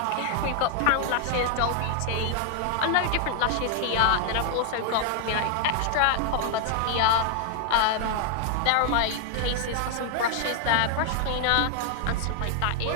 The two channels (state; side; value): different; both; correlation 0.00